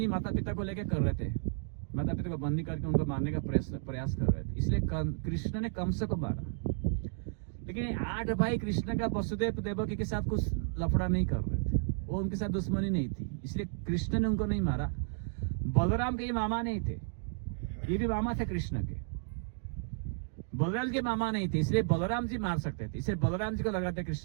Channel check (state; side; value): silent; left; digital silence